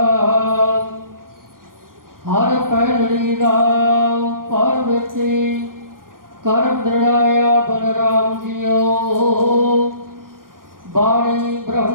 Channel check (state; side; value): late; left; 0.91 ms